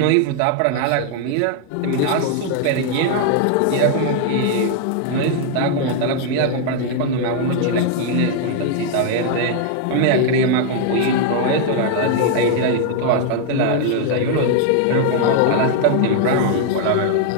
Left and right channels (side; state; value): both; different; correlation 0.00